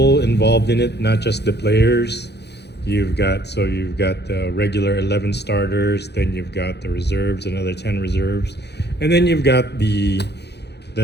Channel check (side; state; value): right; late; 0.49 ms